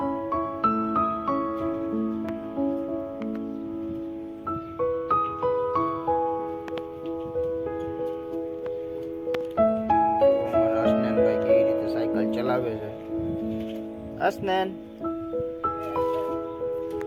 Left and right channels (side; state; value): both; identical; correlation 1.00